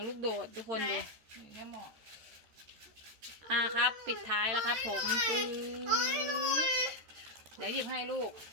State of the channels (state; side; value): late; left; 13 ms